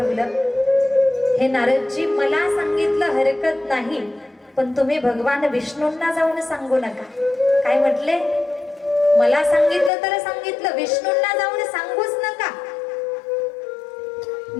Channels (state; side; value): drops out; right; at 9.9 s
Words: हे नारदजी मला सांगितलं हरकत नाही, पण तुम्ही भगवान विष्णूंना जाऊन सांगू नका. काय म्हटले, मला सांगितलं तर सांगितलं, विष्णूंना जाऊन सांगूच नका.